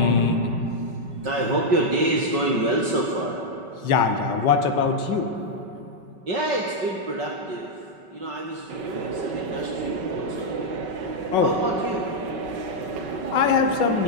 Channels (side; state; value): left; late; 5.3 ms